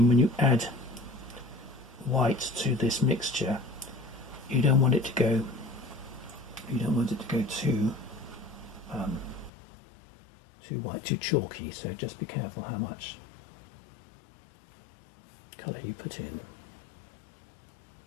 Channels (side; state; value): right; drops out; at 9.5 s